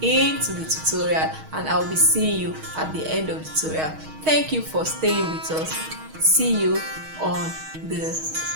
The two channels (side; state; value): left; late; 6.3 ms